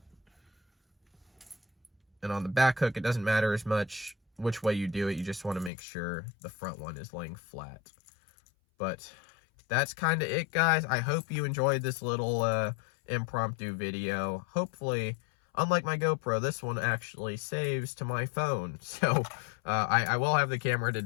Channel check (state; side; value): drops out; right; at 5.7 s